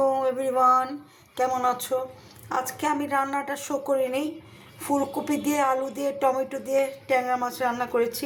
এভরিওয়ান, কেমন আছো? আজকে আমি রান্নাটা শো করিনি। ফুলকপি দিয়ে, আলু দিয়ে, টমেটো দিয়ে ট্যাংরা মাছ রান্না করেছি,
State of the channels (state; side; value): identical; both; correlation 1.00